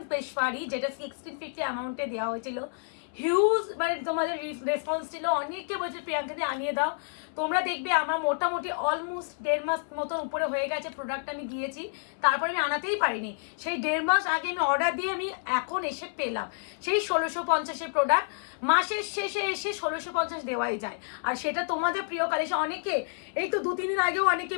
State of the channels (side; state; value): right; silent; 58 dB below the other